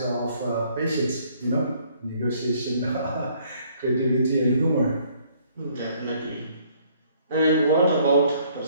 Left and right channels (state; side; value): inverted; both; correlation -0.63